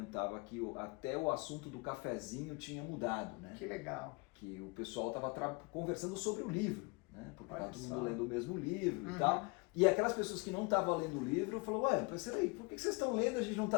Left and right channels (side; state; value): right; quieter; 28.3 dB